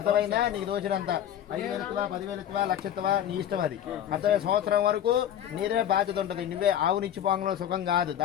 నీకు దోచినంత 5,000 ఎత్తువా 10,000 ఎత్తువా లక్ష ఎత్తువా నీ ఇష్టం అది. అర్థమై సంవత్సరం వరకు నీదే బాధ్యత ఉంటుంది. నువ్వే ఆవునిచ్చి పోంగలో సుఖం కాదు,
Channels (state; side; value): quieter; right; 10.4 dB